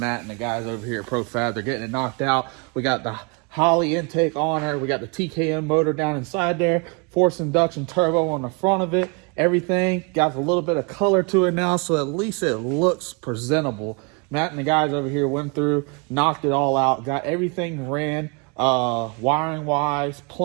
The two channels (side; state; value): left; quieter; 31.8 dB